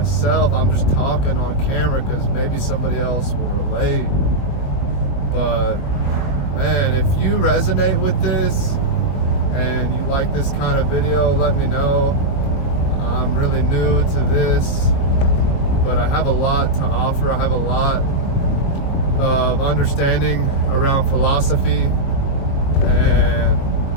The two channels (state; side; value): late; right; 22 ms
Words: I'm just talking on camera because maybe somebody else will relate. But man, if you resonate with this and you like this kind of video, let me know. I'm really new to this, but I have a lot to offer. I have a lot of understanding around philosophy and